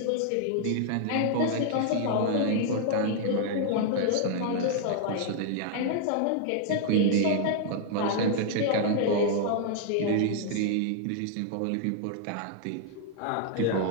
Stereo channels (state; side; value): different; both; correlation 0.00